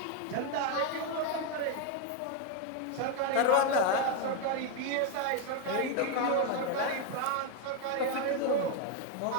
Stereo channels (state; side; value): different; both; correlation 0.01